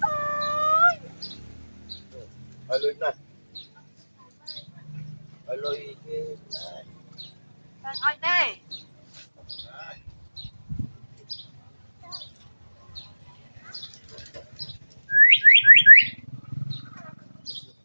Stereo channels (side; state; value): both; inverted; correlation -1.00